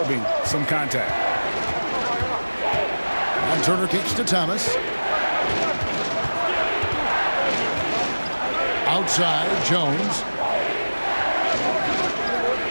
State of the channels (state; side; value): inverted; both; correlation -1.00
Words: some contact. And Turner kicks to Thomas. Outside, Jones.